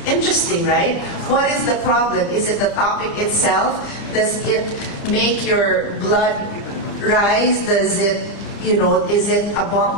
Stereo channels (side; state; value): right; late; 30 ms